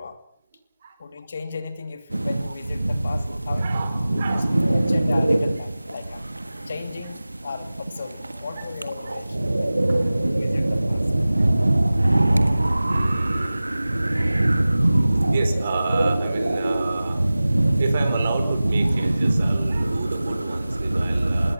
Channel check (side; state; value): both; inverted; correlation -0.97